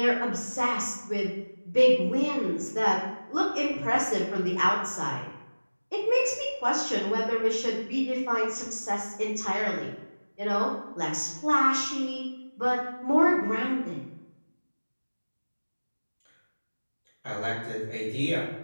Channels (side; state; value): both; inverted; correlation -1.00